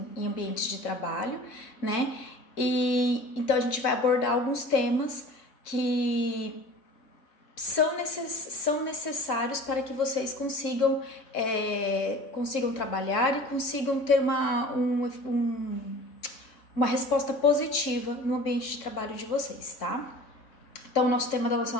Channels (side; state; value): right; late; 3.2 ms